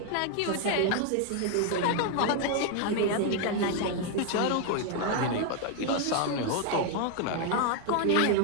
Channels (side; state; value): both; different; correlation 0.00